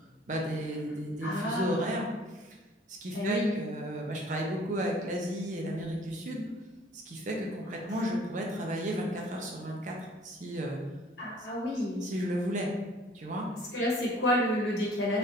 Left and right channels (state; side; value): normal; both; correlation 0.54